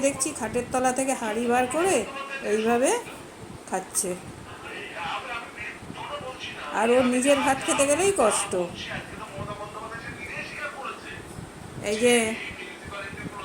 দেখছি খাটের তলা থেকে হাঁড়ি বার করে এইভাবে খাচ্ছে। আর ওর নিজের ভাত খেতে গেলেই কষ্ট। এই যে,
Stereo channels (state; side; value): identical; both; correlation 1.00